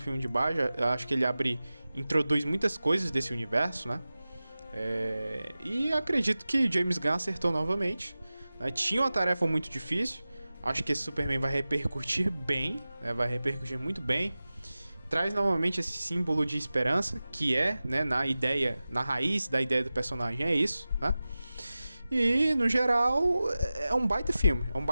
de base. Acho que ele introduz muitas coisas desse universo, né? E acredito que James Gunn acertou novamente, né? Tinha uma tarefa muito difícil. Acho que esse Superman vai repercutir bem, né? Vai repercutir muito bem. Traz novamente esse símbolo de esperança, que é, né, na raiz da ideia do personagem, é isso, né? E, no geral, é um baita filme.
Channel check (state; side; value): inverted; both; correlation -0.96